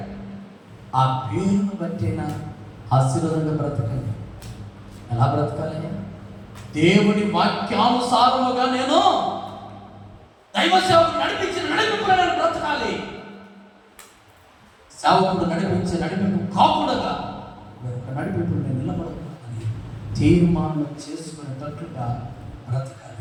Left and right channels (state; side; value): identical; both; correlation 1.00